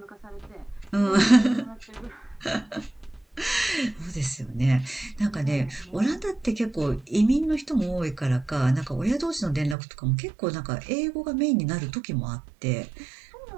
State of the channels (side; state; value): left; drops out; at 9.8 s